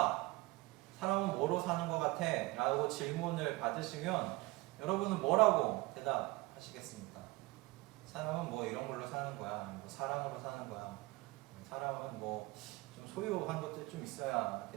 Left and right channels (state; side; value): quieter; left; 22.1 dB